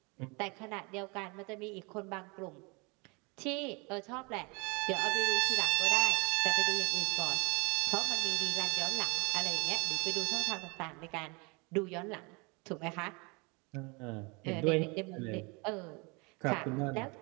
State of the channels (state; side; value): quieter; left; 29.7 dB